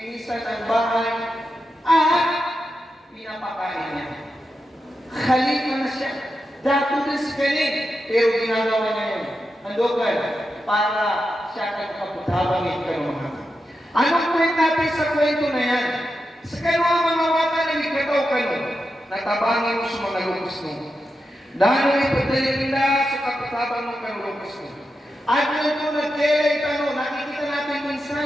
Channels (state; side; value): normal; both; correlation 0.88